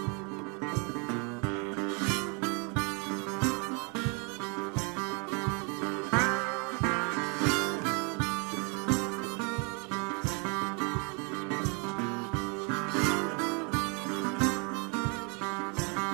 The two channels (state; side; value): quieter; left; 34.1 dB